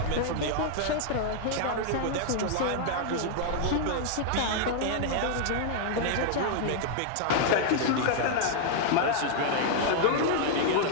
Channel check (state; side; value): different; both; correlation 0.00